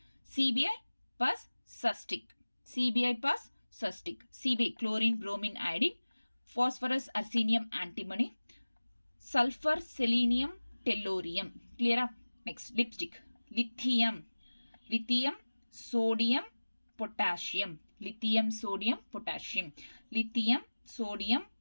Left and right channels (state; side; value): inverted; both; correlation -1.00